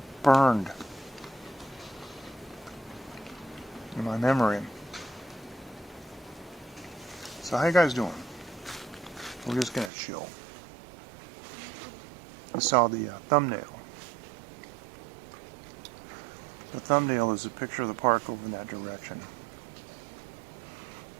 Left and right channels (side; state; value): left; drops out; at 9.9 s